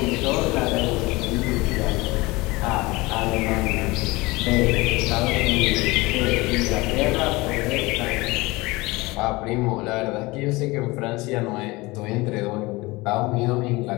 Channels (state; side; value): quieter; right; 22.4 dB